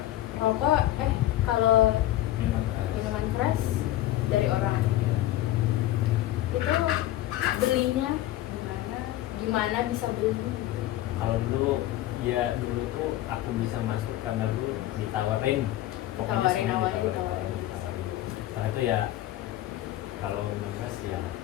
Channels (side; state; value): right; quieter; 14.6 dB